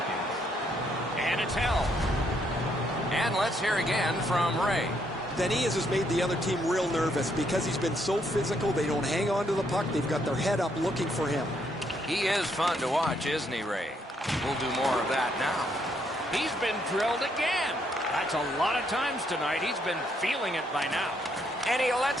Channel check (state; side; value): normal; both; correlation 0.73